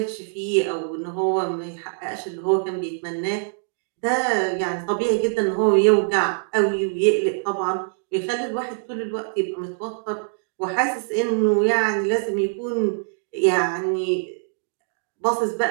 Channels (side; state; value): left; silent; digital silence